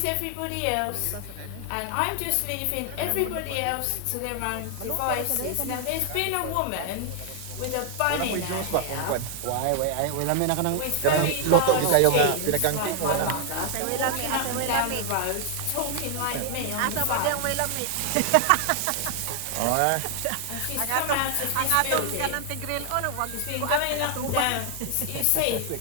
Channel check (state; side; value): different; both; correlation 0.00